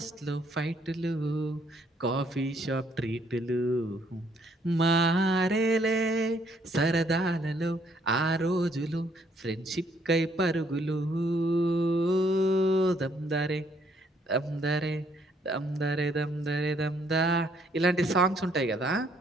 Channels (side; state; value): both; normal; correlation 0.67